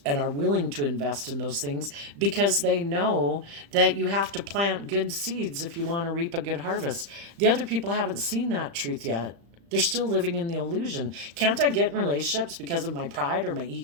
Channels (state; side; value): late; left; 35 ms